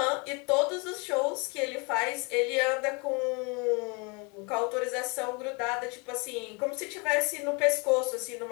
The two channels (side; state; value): right; quieter; 31.1 dB